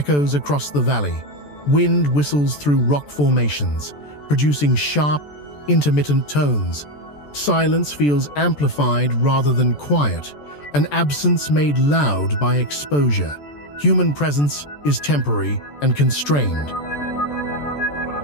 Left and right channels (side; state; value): right; late; 14 ms